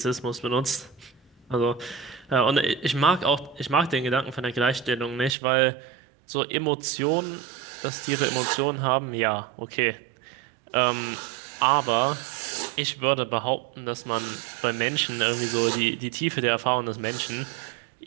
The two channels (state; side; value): drops out; left; at 5.4 s